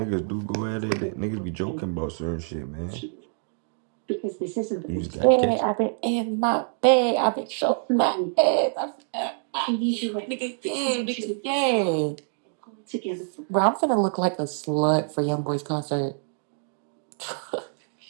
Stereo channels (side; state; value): left; silent; digital silence